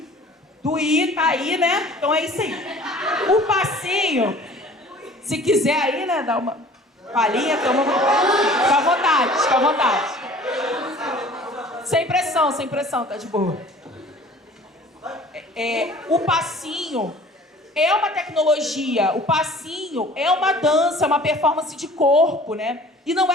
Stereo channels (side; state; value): both; normal; correlation 0.48